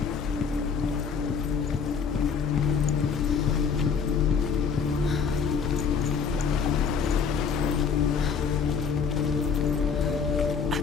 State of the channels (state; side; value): quieter; right; 6.0 dB